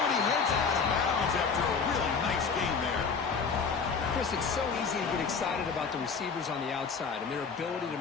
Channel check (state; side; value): quieter; right; 5.5 dB